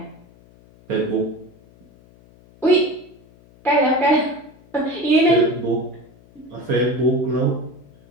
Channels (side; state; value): left; noise; hum, 27 dB below the sound